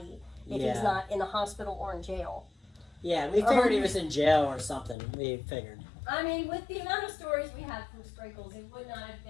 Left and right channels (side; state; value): right; drops out; at 5.0 s